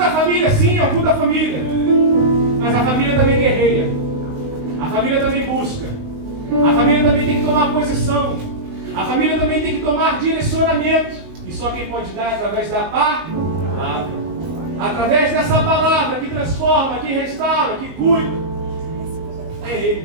família, sim, é um culto da família. Mas a família também guerreia. A família também busca. A família também tem que tomar posição. A família também tem que tomar direcionamento. E só quem pode dar é através da palavra. Através dessa palavra que transforma, que restaura, que cuida. É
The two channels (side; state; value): left; late; 20 ms